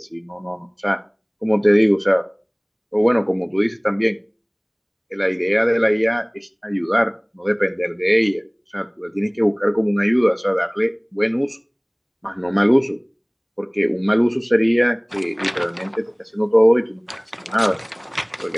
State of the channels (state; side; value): identical; both; correlation 1.00